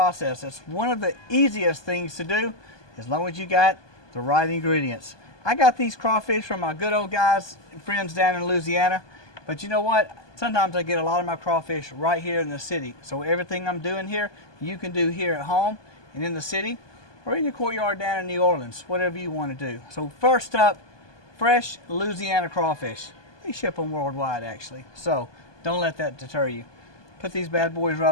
It's one of the easiest things to do as long as you got the right ingredients. I got these crawfish from my good old guys and friends down in Louisiana, but you know what? Sometimes I get a lot of my crawfish right here in the city. So everything I'm doing here, you can do here at home and in the city or in your courtyard down in New Orleans, whatever you want to do. So first up, fresh Louisiana crawfish. They ship them worldwide actually, so don't let that deter you. Put these bad boys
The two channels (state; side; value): late; right; 1.2 ms